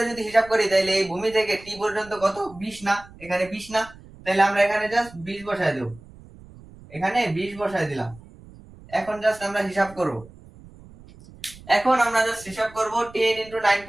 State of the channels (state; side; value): noise; right; rumble, 21 dB below the sound